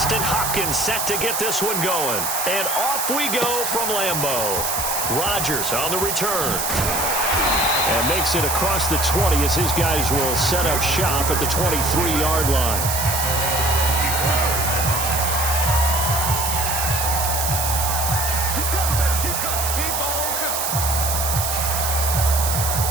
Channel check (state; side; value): noise; right; hiss, 1 dB below the sound